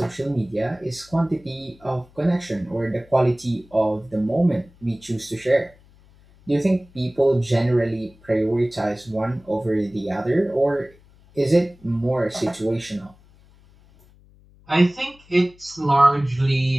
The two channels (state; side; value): noise; left; hum, 28 dB below the sound